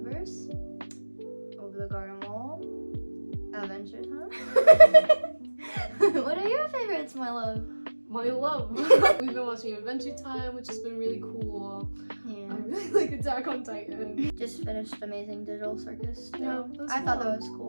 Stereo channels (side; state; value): both; inverted; correlation -1.00